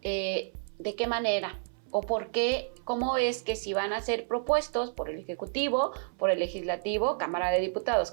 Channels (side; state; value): left; silent; 58 dB below the other